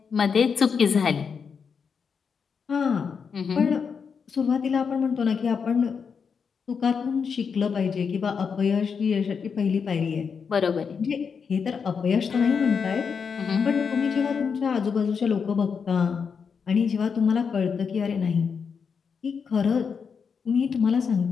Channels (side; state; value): right; quieter; 6.1 dB